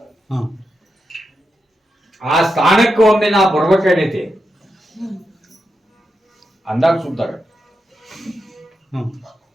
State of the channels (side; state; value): both; normal; correlation 0.87